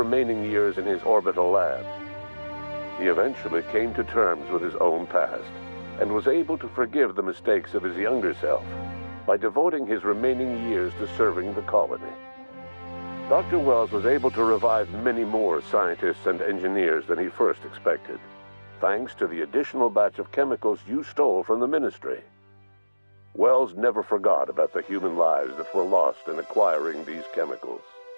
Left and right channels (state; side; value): inverted; both; correlation -1.00